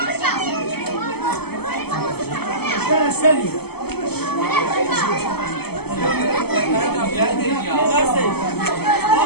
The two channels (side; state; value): right; late; 0.96 ms